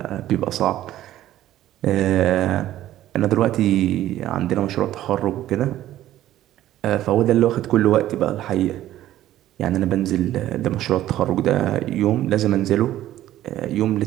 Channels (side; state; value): left; quieter; 13.6 dB